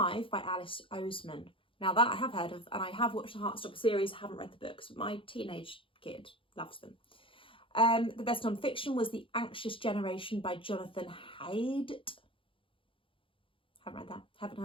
by Alice Oseman. Now that I have heard of, and I have watched the Heartstopper series, haven't read the books, but my teenage kid loves them. The best non-fiction was The Anxious Generation by Jonathan Haidt. Haven't read that, haven't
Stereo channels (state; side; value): late; right; 0.25 ms